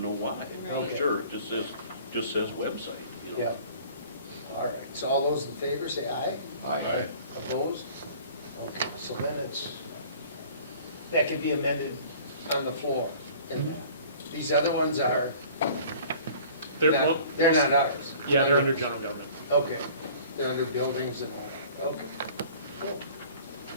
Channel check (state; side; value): inverted; both; correlation -0.48